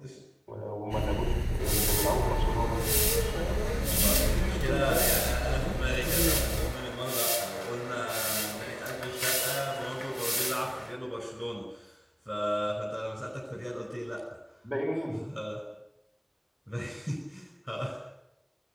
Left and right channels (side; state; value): both; identical; correlation 1.00